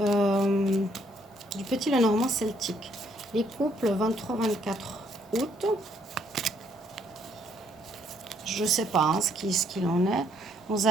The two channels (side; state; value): both; normal; correlation 0.69